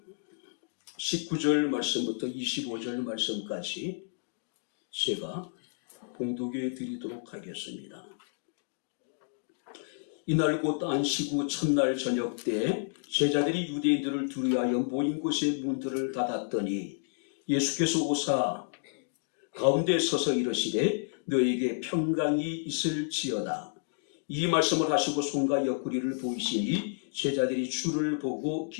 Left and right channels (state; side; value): silent; right; digital silence